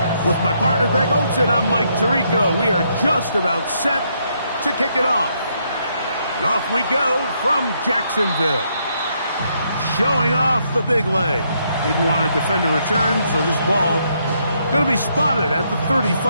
With my partner Greg Olson, I'm Mike Tirico. We are just about set to kick it off. And off we go from Jacksonville. Showing off the big leg. Didn't want to defend a return, so this ball going to be spotted at the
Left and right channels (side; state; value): both; inverted; correlation -0.74